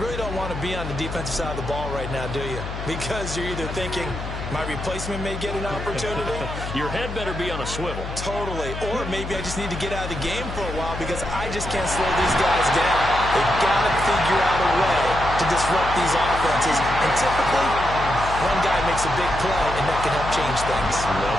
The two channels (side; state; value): left; noise; hum, 7 dB below the sound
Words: don't want to be on the defensive side of the ball right now, do you? Because you're either thinking, my replacement may get an opportunity. Your head better be on a swivel. Totally. Or maybe I just need to get out of the game for a while because I just can't slow these guys down. They've got to figure out a way to disrupt these offenses. And typically, one guy makes a big play, and that can help change things.